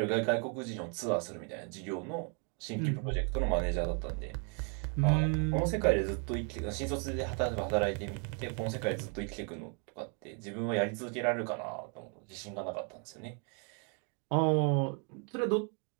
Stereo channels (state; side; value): quieter; left; 38.9 dB